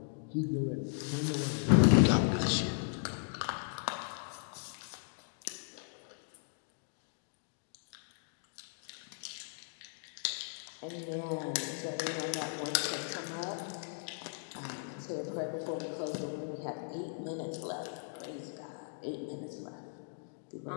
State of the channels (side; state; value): right; silent; digital silence